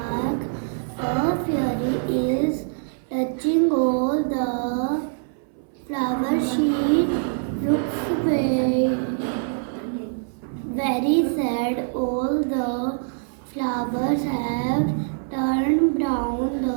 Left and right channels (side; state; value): left; silent; 63 dB below the other